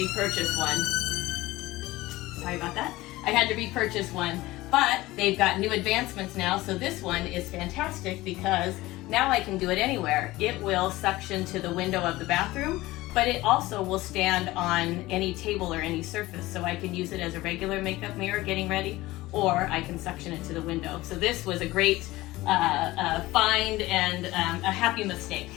one. Sorry about that. I had to repurchase one. But they've got new advancements now, so this one is fantastic because now I can do it anywhere. It will suction to the window of the bathroom, but it also will stand on any table or any surface, so I can use it as a regular makeup mirror getting ready, or I can suction it to the window. So this was a great find and a happy mistake.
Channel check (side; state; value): right; quieter; 18.6 dB